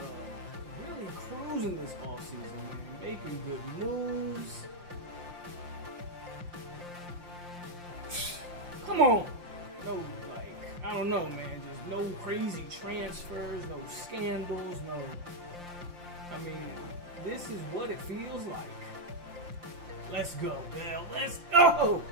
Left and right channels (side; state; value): left; late; 5.7 ms